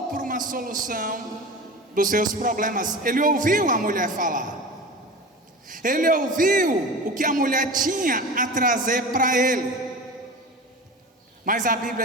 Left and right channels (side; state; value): both; normal; correlation 0.32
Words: por uma solução dos seus problemas. Ele ouviu a mulher falar, ele ouviu o que a mulher tinha a trazer para ele, mas a